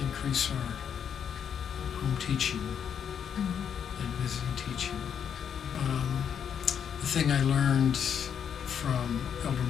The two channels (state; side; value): quieter; right; 8.0 dB